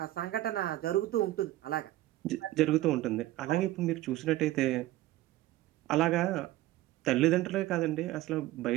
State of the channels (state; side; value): quieter; left; 15.9 dB